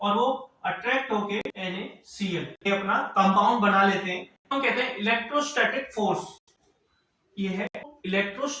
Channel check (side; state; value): both; identical; correlation 1.00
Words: और वो अट्रैक्ट होके NaCl ये अपना कंपाउंड बना लेते हैं। हम कहते हैं इलेक्ट्रोस्टैटिक फोर्स, ये है